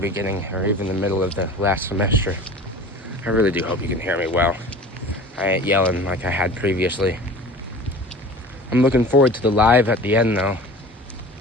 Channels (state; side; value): normal; both; correlation 0.40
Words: or even the middle of the last semester. I really do hope you can hear me well. I ain't yelling like I had previously. I'm looking forward to the live at the end though.